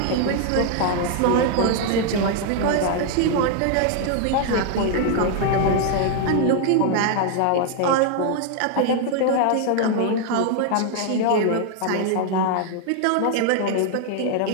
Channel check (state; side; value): different; both; correlation 0.00